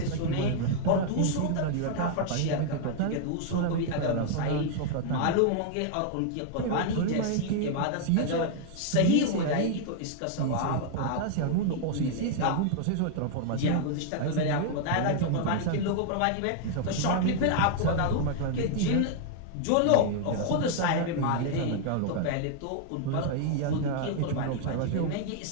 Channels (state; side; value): different; both; correlation 0.00